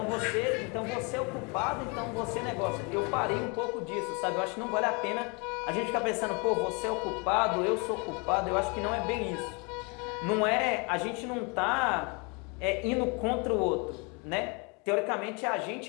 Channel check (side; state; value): right; quieter; 31.8 dB